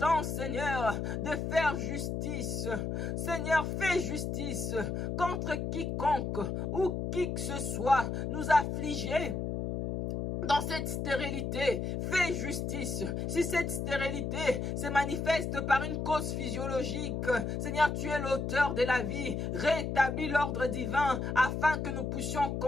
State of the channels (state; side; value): noise; left; hum, 2 dB below the sound